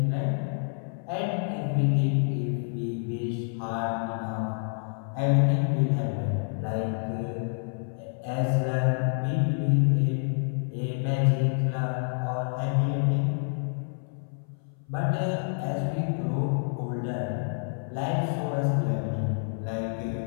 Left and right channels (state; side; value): silent; right; 57 dB below the other